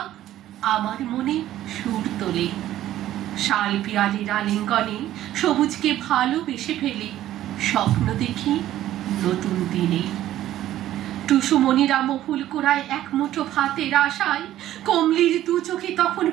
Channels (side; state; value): left; quieter; 13.3 dB